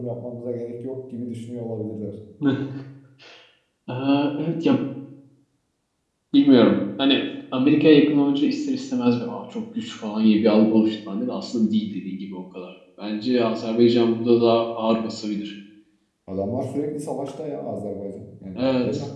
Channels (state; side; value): identical; both; correlation 1.00